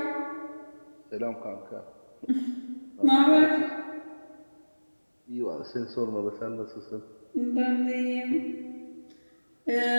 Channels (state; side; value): inverted; both; correlation -1.00